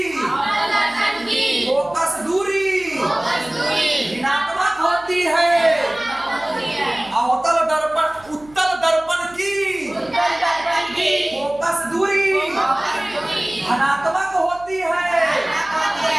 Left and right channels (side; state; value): right; noise; hum, 25 dB below the sound